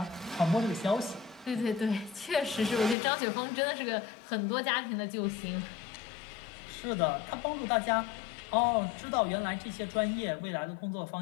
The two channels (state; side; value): drops out; right; at 3.0 s